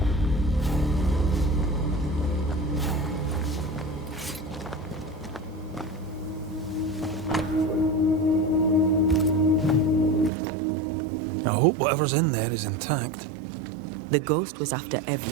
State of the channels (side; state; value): left; drops out; at 10.3 s